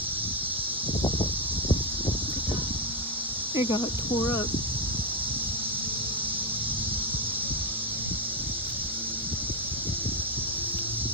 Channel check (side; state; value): both; normal; correlation 0.06